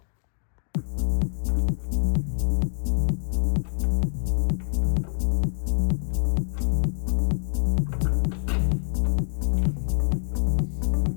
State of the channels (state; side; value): silent; right; 61 dB below the other